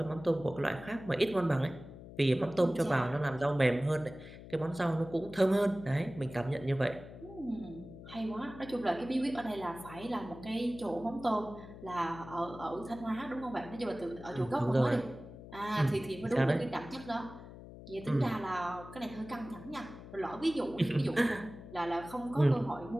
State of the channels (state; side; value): noise; left; hum, 15 dB below the sound